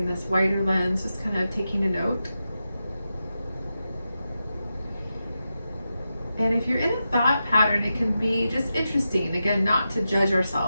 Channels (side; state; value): both; inverted; correlation -0.90